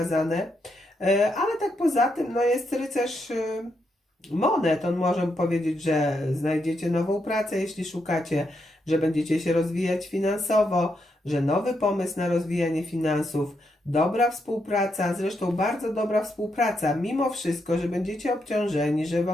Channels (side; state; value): both; normal; correlation 0.81